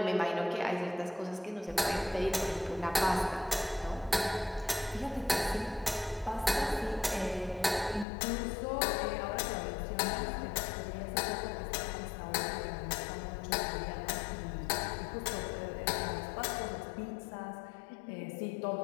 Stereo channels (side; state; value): right; drops out; at 8.1 s